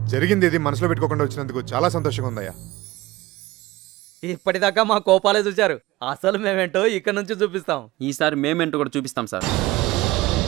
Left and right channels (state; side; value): quieter; left; 18.8 dB